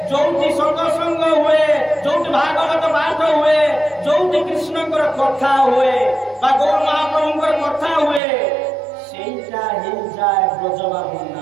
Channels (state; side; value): drops out; left; at 8.2 s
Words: ଯୋଉଠି ସତ୍ସଙ୍ଗ ହୁଏ, ଯୋଉଠି ଭାଗବତ ପାଠ ହୁଏ, ଯୋଉଠି କୃଷ୍ଣଙ୍କର କଥା ହୁଏ ବା ଗୌର ମହାପ୍ରଭୁଙ୍କର କଥା ହୁଏ, ସେଇଟା ହେଇଯାଏ ବ୍ରଜବା